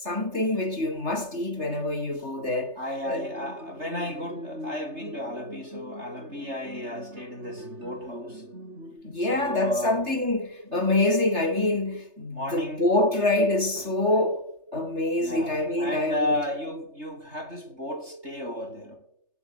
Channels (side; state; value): left; late; 3.3 ms